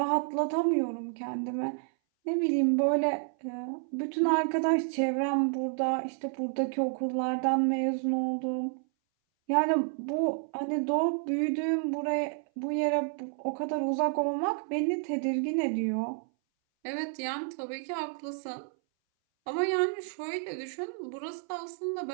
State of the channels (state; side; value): silent; left; 58 dB below the other